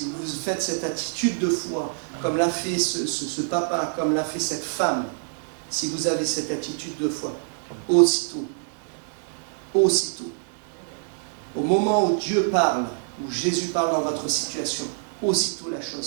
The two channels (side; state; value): left; silent; digital silence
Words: vous faites cette attitude de foi, comme l'a fait ce papa, comme l'a fait cette femme, si vous avez cette attitude de foi, aussitôt, aussitôt, au moment où Dieu parle, où Jésus parle dans votre situation, aussitôt la